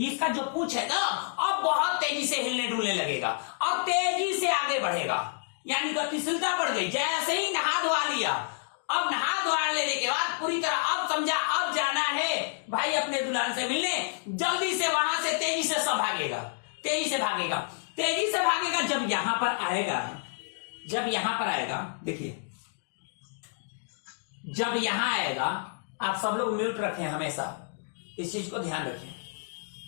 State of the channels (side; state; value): right; silent; digital silence